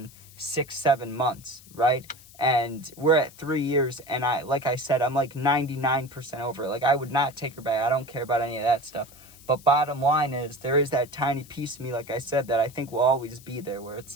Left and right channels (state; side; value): noise; left; hiss, 22 dB below the sound